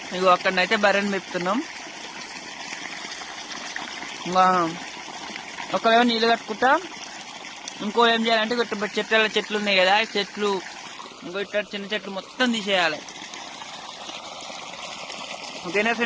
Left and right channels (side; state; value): both; identical; correlation 1.00